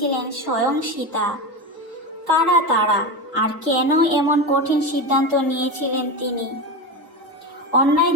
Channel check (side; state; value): both; normal; correlation 0.20